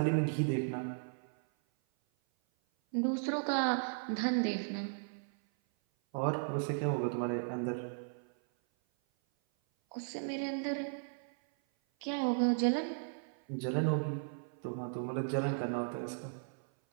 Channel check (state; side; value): silent; left; 54 dB below the other